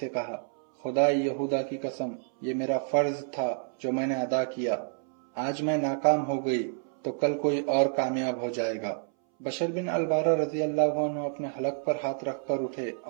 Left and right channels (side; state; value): left; silent; 59 dB below the other